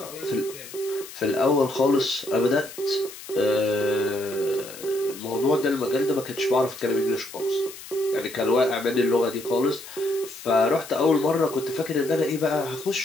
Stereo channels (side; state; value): left; noise; hiss, 15 dB below the sound